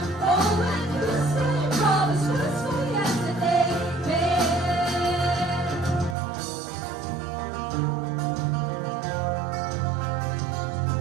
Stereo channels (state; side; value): drops out; left; at 6.2 s